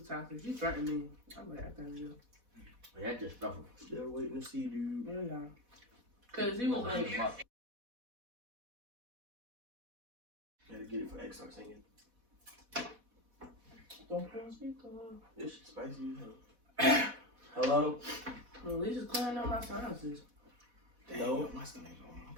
toxic. He threatened me. I'm like, I can't do. That's just stuff. Still waiting to see, dude. Yeah. Cause he was like, Gotta get it for X. Start singing. don't put on speaker. This shit spicy as hell. Hello? Well, at least it's clearing up my sinuses. No. My stomach going. I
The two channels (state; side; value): late; left; 4.1 ms